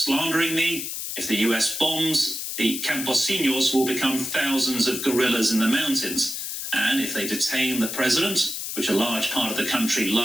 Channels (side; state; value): left; noise; hiss, 5 dB below the sound